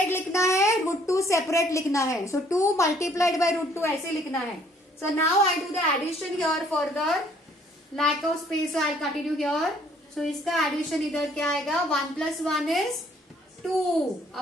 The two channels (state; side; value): normal; both; correlation 0.62